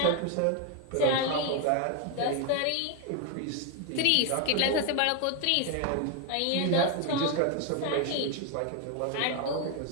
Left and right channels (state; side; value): different; both; correlation 0.01